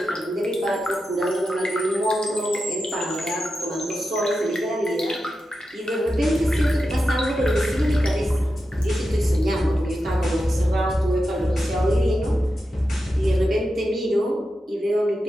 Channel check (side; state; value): both; normal; correlation 0.90